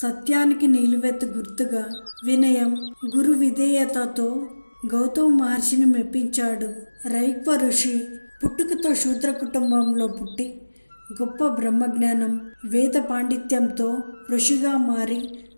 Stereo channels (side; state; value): both; inverted; correlation -1.00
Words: నిలువెత్తు గుర్తుగా వినయం, గురు విధేయతతో గౌతమ మహర్షిని మెప్పించాడు. రైక్వ ఋషి. పుట్టుకతో శూద్ర కుటుంబంలో పుట్టి గొప్ప బ్రహ్మజ్ఞానం, వేద పాండిత్యంతో ఋషిగా మారి